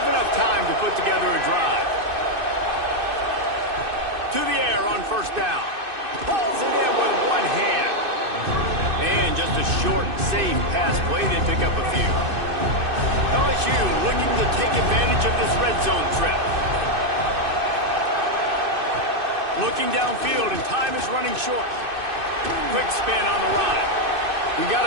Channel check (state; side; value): late; left; 2.6 ms